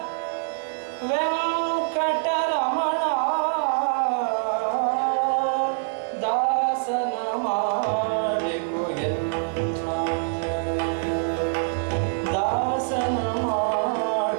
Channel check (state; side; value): silent; left; digital silence